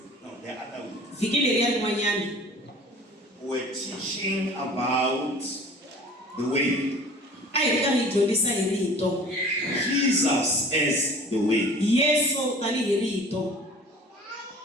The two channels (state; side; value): normal; both; correlation 0.46